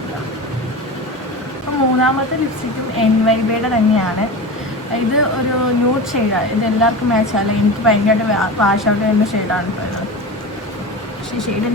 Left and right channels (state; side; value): normal; both; correlation 0.28